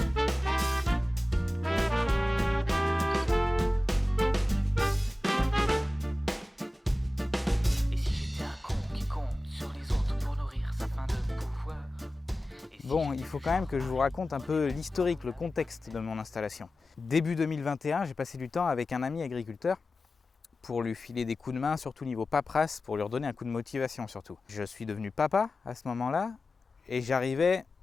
Bon, il faut quand même que je vous raconte un peu l'historique, le contexte de mon installation. Début 2021, j'ai passé du temps avec un ami agriculteur pour lui filer des coups de main, surtout niveau paperasse, pour lui redonner un coup de motivation surtout. Je suis devenu papa à ce moment-là et j'arrivais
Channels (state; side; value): normal; both; correlation 0.95